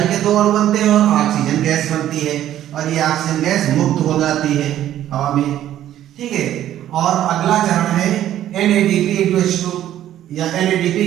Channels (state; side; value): quieter; left; 12.1 dB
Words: के 2 अणु बनते हैं और ऑक्सीजन गैस बनती है और ये ऑक्सीजन गैस मुक्त हो जाती है हवा में। ठीक है, और अगला चरण है NADP*H2 या